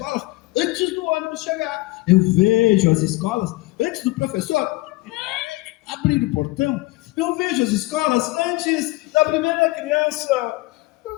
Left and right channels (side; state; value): right; quieter; 21.3 dB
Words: antes do ônibus chegar. Eu vejo as escolas antes do professor abrir o portão. Eu vejo as escolas antes da primeira criança